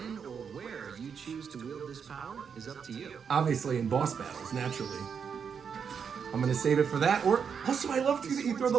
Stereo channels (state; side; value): quieter; left; 6.7 dB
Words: or where you choose to wield this power is up to you. Obviously in boss battles, naturally. I'm gonna save it for that. Or also, I love too that you throw the